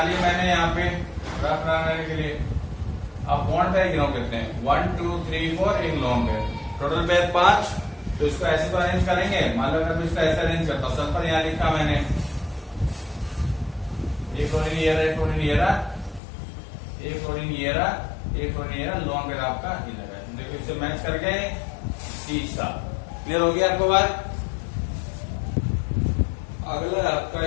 लिए मैंने यहाँ पे रफ बनाने के लिए। अब बॉन्ड पेयर गिनो करते हैं, 1 2 3 4, एक लॉन्ग पेयर, टोटल पेयर 5। तो इसको ऐसे तो अरेंज करेंगे। मान लो अगर मैं इसको ऐसे अरेंज करता हूँ, सल्फर यहाँ लिखा मैंने, एक फ्लोरीन ये रहा, एक फ्लोरीन ये रहा, एक फ्लोरीन ये रहा, एक फ्लोरीन ये रहा, लॉन्ग पेयर आपका ये लगा है। देखो इससे मैच कर गए सीसा। क्लियर हो गया आपको बात? अगला आपका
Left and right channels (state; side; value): drops out; right; at 16.2 s